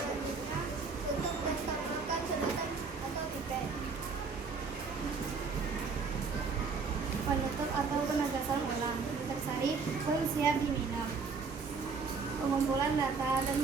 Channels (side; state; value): left; quieter; 4.9 dB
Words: tutup dan tambahkan sedotan atau pipet. Penutup atau penegasan ulang. Nutrisari pun siap diminum. Pengumpulan data dan